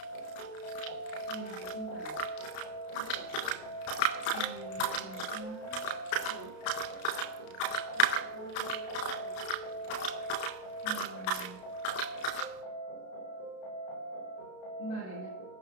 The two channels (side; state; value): right; late; 32 ms